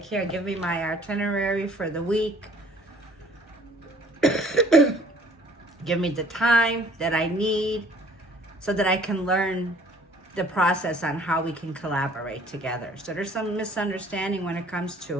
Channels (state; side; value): normal; both; correlation 0.55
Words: here, give me my itinerary for the week. Give me the time that I need so that I can learn the process on how we can collaborate together. So there's some misunderstanding when it comes